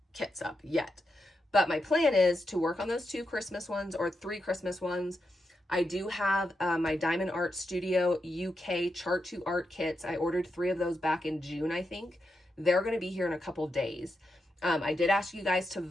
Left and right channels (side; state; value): both; normal; correlation 0.86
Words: kits up yet, but my plan is to work on those 2 Christmas ones or 3 Christmas ones. I do have my Diamond Art Studio UK Chart to Art kits. I ordered 3 of those back in June, I think. They're going to be here in a couple days. I did ask you guys to